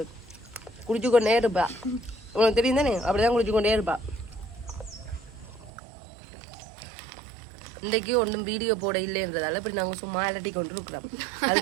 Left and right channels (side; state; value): left; drops out; at 5.7 s